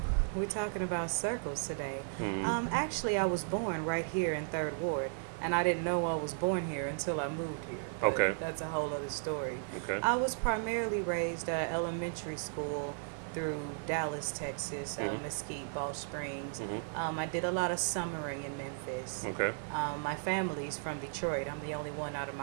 we're talking about circles today. Mm-hmm. Actually, I was born right here in 3rd Ward, and I didn't know I was born here until I moved here. But okay. That's a whole other story. Okay. I was primarily raised elementary school through Dallas, Texas, Mesquite, Ball Springs. Mm-hmm. I did a lot of summering in Memphis. Okay. My family's from Detroit. I'm the only one out of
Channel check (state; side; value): silent; left; 54 dB below the other